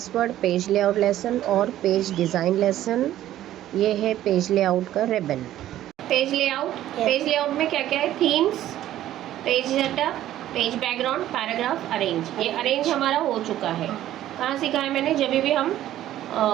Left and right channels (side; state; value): left; quieter; 13.0 dB